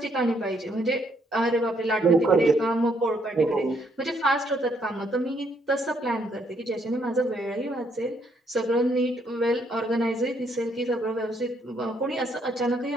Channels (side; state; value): both; normal; correlation 0.71